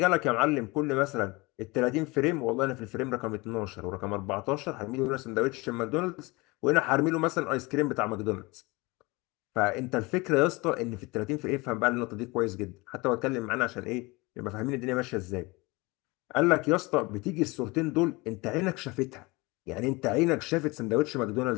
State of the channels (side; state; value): right; quieter; 24.2 dB